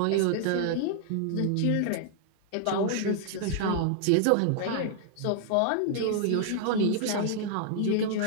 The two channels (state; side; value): different; both; correlation -0.01